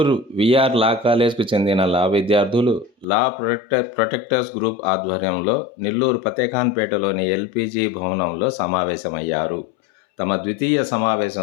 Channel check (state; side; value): drops out; right; at 3.1 s